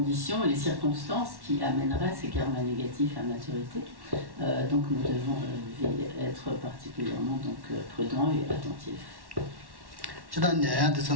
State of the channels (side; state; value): left; late; 1.1 ms